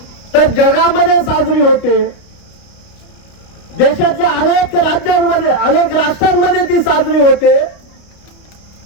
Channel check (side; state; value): right; late; 29 ms